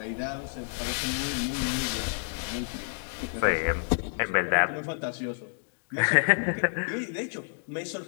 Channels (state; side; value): silent; right; 58 dB below the other